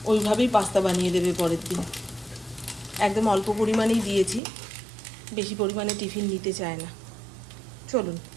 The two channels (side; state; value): left; drops out; at 4.4 s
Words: ওইভাবেই পাস্তা বানিয়ে দেবে পরের দিন। একদম অল্প পরিমাণেই দিয়েছি, বেশি পরিমাণে টিফিন নিতে চায় না। চলুন,